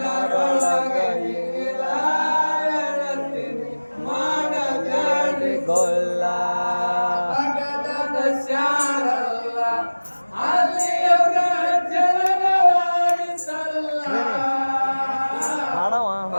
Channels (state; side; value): inverted; both; correlation -1.00